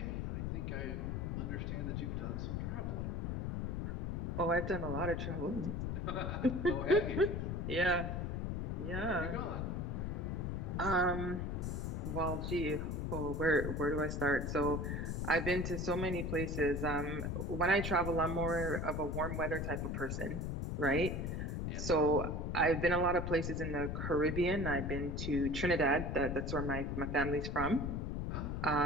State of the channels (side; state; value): left; noise; rumble, 2 dB below the sound